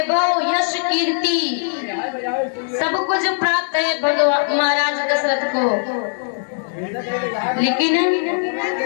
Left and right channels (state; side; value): silent; right; digital silence